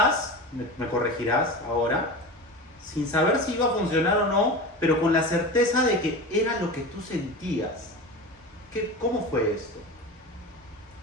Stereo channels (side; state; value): both; normal; correlation 0.28